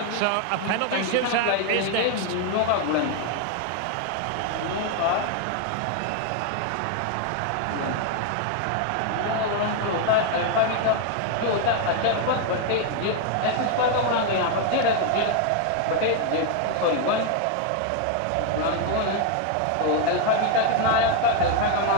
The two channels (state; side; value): different; both; correlation 0.00